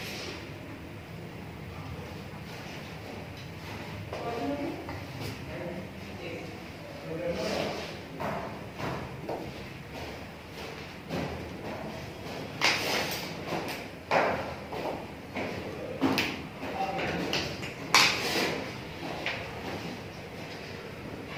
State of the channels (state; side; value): identical; both; correlation 1.00